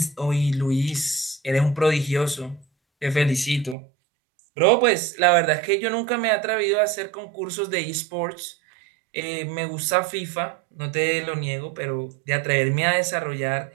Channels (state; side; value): drops out; left; at 3.8 s